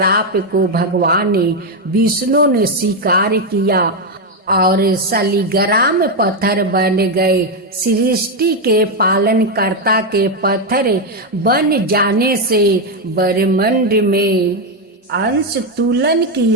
को भगवान विष्णु ने स्वीकार किया और शालिग्राम पत्थर बन गए। सृष्टि के पालनकर्ता के पत्थर बन जाने से ब्रह्मांड में अंश तुलन की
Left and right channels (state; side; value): normal; both; correlation 0.05